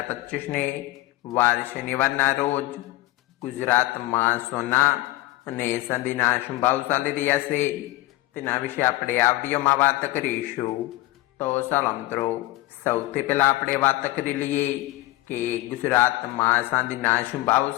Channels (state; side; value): quieter; right; 18.5 dB